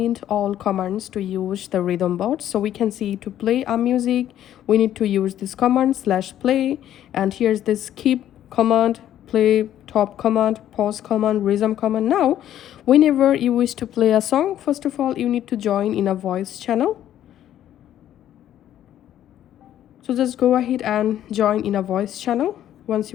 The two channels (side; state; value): right; quieter; 11.5 dB